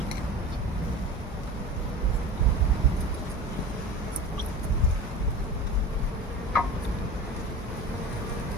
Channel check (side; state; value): both; normal; correlation 0.34